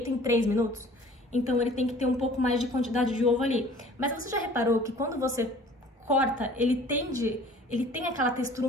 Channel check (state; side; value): normal; both; correlation 0.49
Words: em 3 minutos. Então, ele tem que ter um pouco mais de quantidade de ovo ali. Mas você já reparou que quando você corta, ele tem aquela textura